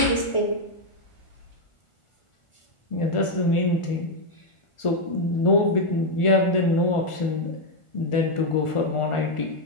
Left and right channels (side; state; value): right; late; 1.4 ms